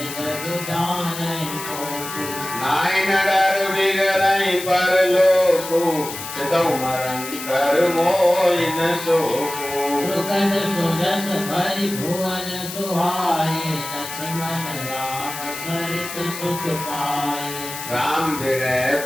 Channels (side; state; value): left; noise; hiss, 9 dB below the sound